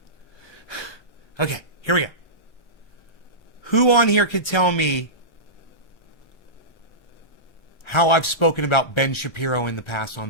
right. Okay, here we go. Who on here could tell me how I've spoken about Ben Shapiro in the past on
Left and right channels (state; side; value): late; right; 1.3 ms